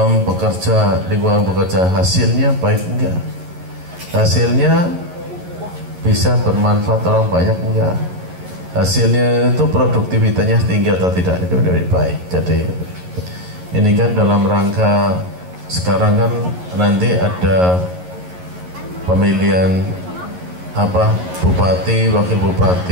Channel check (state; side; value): late; left; 11 ms